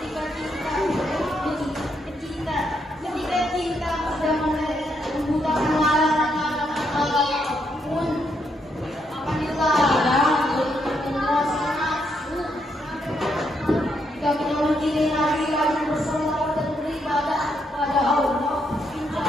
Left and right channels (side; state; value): both; normal; correlation 0.77